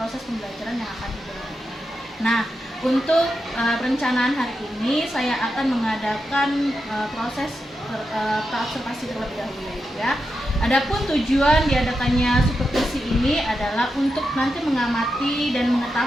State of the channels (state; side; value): normal; both; correlation 0.87